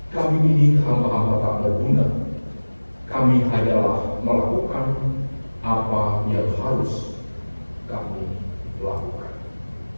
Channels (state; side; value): inverted; both; correlation -1.00